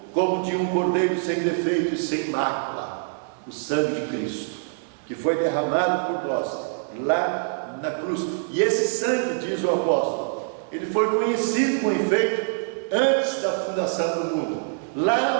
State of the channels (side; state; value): left; silent; 59 dB below the other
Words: como de um cordeiro sem defeito e sem mácula, o sangue de Cristo, que foi derramado por nós lá na cruz. E esse sangue, diz o apóstolo, ele foi conhecido com efeito antes da fundação do mundo.